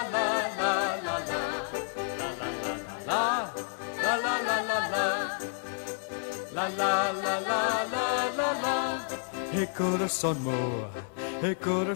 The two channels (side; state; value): right; silent; 58 dB below the other